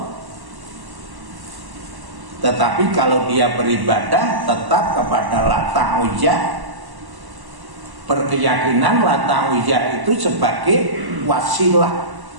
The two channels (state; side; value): late; left; 1.1 ms